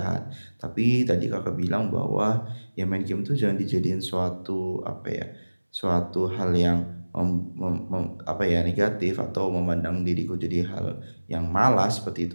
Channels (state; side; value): inverted; both; correlation -1.00